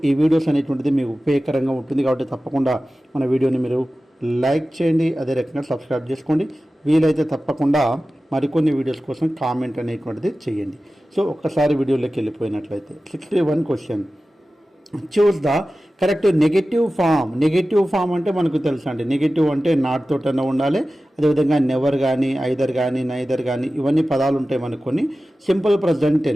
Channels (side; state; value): both; normal; correlation 0.95